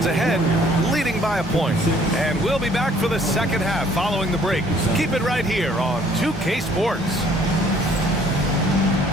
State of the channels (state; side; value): normal; both; correlation 0.59